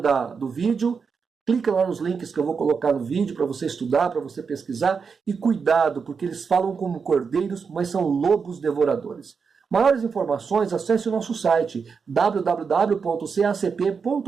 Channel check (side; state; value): left; quieter; 5.6 dB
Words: do vídeo, clica lá nos links que eu vou colocar no vídeo para você estudar, para você pesquisar. E cuidado, porque eles falam como cordeiros, mas são lobos devoradores. Maiores informações, acesse o nosso site